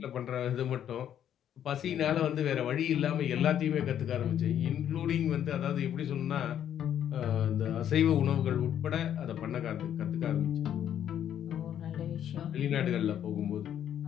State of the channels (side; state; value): right; quieter; 10.0 dB